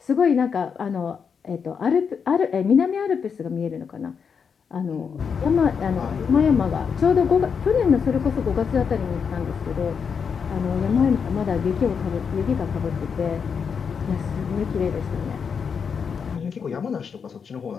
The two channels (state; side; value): quieter; right; 6.4 dB